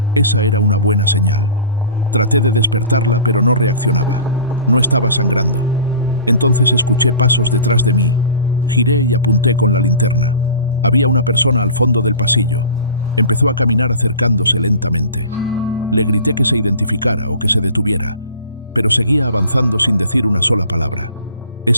Esa era una buena señal. Traté de despertarla, pero no reaccionaba. No estaba sangrando. Entonces escuché pasos detrás de mí. Giré y apunté con la linterna. Había una persona al fondo del pasillo. Empezó a caminar acercándose lentamente. Le grité que se identificara o que se detuviera, pero seguía avanzando sin decir una sola palabra.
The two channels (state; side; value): inverted; both; correlation -0.40